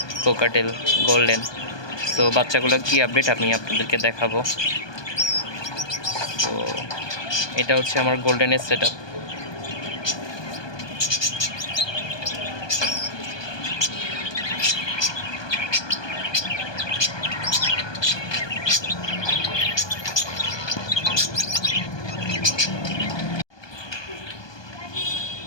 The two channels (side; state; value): right; late; 1.2 ms